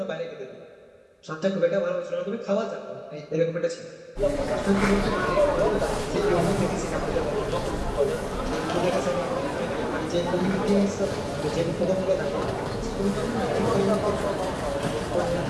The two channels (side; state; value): both; identical; correlation 1.00